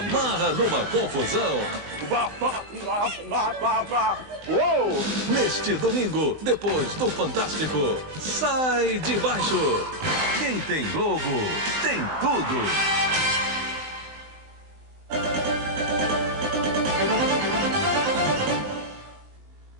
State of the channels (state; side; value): late; left; 19 ms